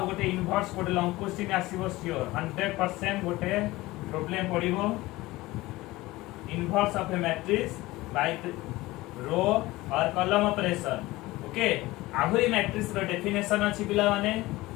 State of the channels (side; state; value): right; quieter; 19.2 dB